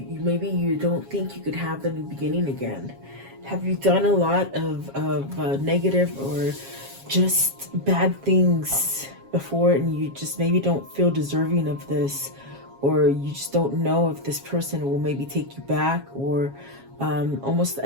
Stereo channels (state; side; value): late; left; 7.3 ms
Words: maybe you don't think you could have the new beginning again. Have you done a lot of negative or just bad things before, and you just maybe don't feel deserving of this, or you just don't know if this person will maybe take you back, or almost